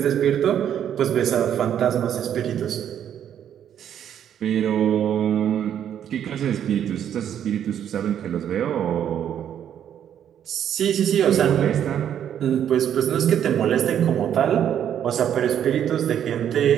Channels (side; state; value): left; quieter; 9.6 dB